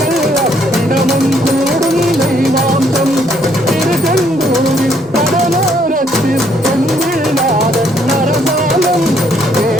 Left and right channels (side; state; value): left; noise; hum, 29 dB below the sound